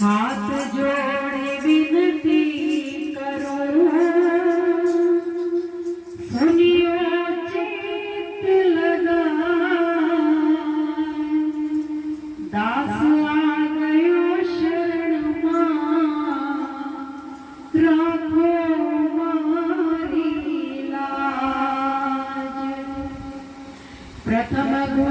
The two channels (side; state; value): both; identical; correlation 1.00